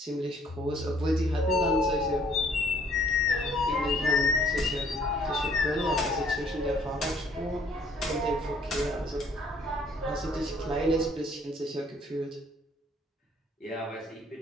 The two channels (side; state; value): both; normal; correlation 0.61